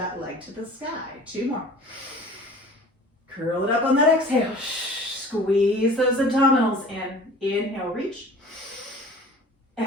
leg to the sky. 2 more. Curl it up on that exhale. Squeeze those abdominals in. Inhale, reach.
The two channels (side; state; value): both; normal; correlation 0.45